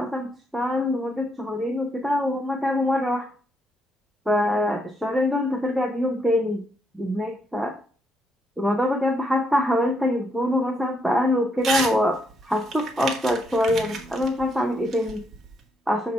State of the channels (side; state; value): both; normal; correlation 0.76